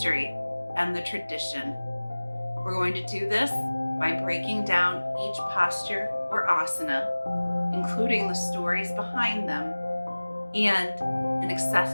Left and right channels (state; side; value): inverted; both; correlation -1.00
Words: and the tradition. We're going to do this by breaking down each posture or asana, including the stories behind them, and an